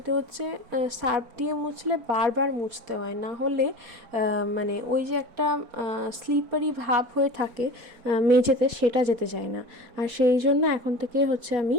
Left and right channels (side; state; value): left; late; 4.4 ms